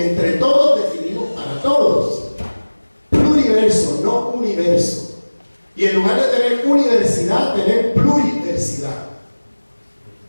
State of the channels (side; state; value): both; inverted; correlation -1.00